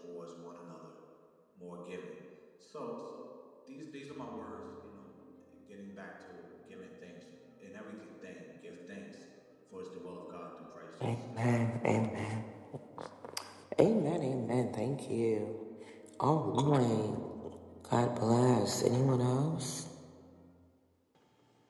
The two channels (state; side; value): identical; both; correlation 1.00